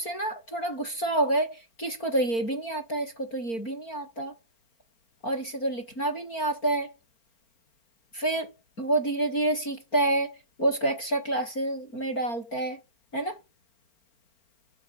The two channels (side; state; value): right; late; 4.4 ms